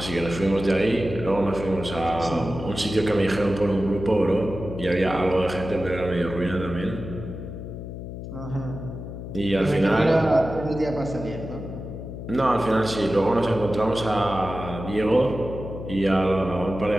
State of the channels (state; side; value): noise; left; hum, 9 dB below the sound